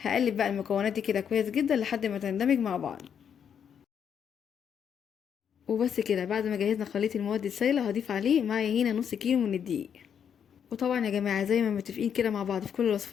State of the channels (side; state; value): right; quieter; 8.0 dB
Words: بقى المكونات دي كده كويس جدا لحد ما تندمج مع بعض. وبس كده، بعد ما جهزنا خليط المواد السائلة هضيف عليه معايا هنا نص كيلو من الدقيق. وطبعا يا جماعة زي ما متفقين كده مع بعض في كل